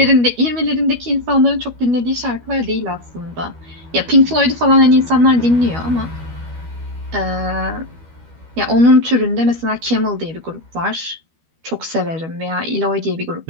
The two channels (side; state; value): left; late; 12 ms